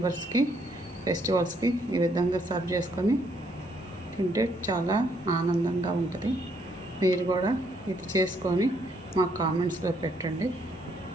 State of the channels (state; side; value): normal; both; correlation 0.71